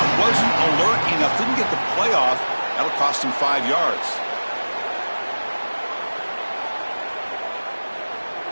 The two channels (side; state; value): both; inverted; correlation -1.00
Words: Didn't get the playoff. That'll cost him 5 yards.